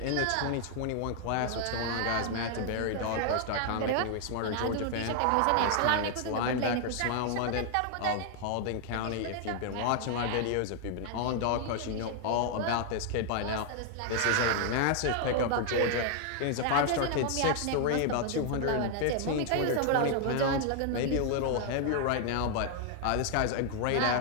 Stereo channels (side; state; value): both; different; correlation 0.00